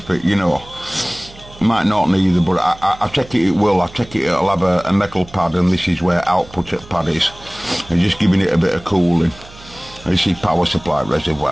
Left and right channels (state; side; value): noise; right; hum, 20 dB below the sound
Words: it, you know. Might not neither, but I take it will. I take it it'll have a metal pad, and this is where output at pad is. And just giving it a bit of cooling. This is power supply